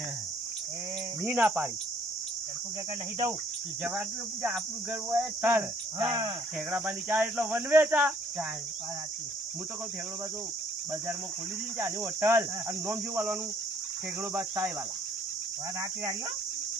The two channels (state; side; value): normal; both; correlation 0.62